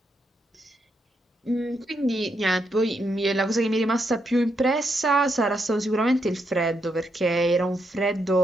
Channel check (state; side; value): normal; both; correlation 0.80